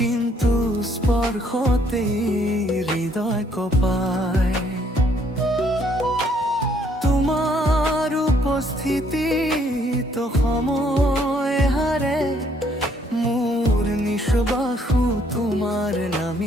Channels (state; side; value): normal; both; correlation 0.66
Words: স্পৰ্শতে হৃদয় কঁপায়। তোমাৰ উপস্থিতিত সময় হাৰে, মোৰ নিশ্বাসো তোমাৰ